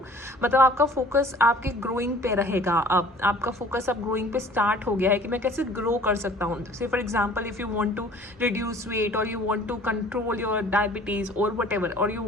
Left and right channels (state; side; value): normal; both; correlation 0.50